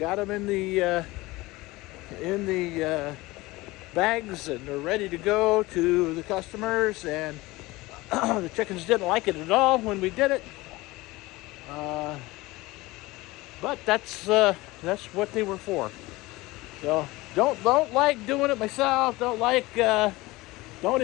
them in the bags, and they're ready to go to the customers. And the chickens didn't like it at all when we did it. But that's what they were for. So don't like doing it myself. Don't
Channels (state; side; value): quieter; right; 20.6 dB